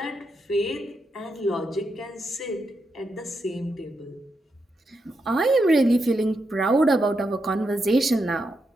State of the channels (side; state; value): both; normal; correlation 0.84